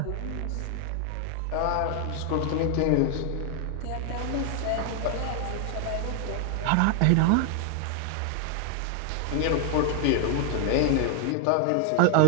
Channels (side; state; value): both; different; correlation 0.00